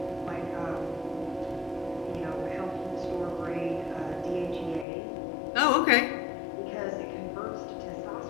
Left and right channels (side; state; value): right; drops out; at 4.9 s